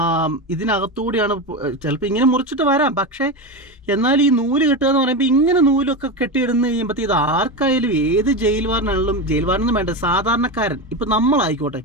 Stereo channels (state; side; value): normal; both; correlation 0.18